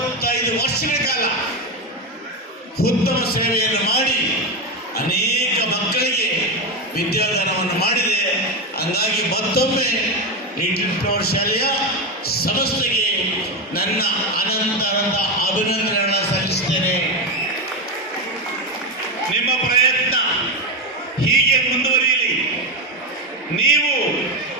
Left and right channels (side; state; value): both; normal; correlation 0.13